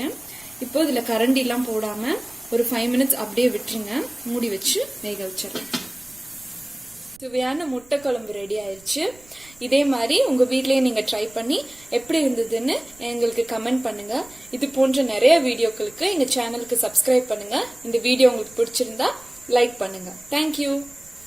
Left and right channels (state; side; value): noise; right; rumble, 26 dB below the sound